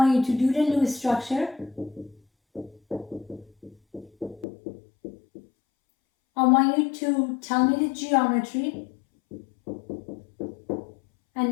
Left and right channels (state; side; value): drops out; right; at 4.5 s